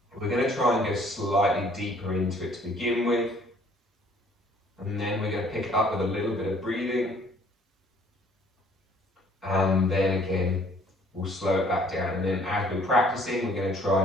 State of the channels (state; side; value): normal; both; correlation 0.58